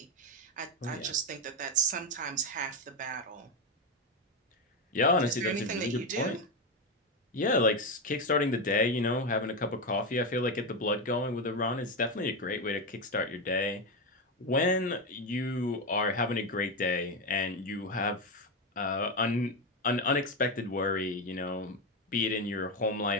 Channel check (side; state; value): both; normal; correlation 0.11